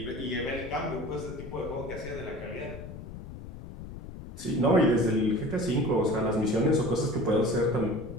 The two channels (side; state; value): left; noise; rumble, 12 dB below the sound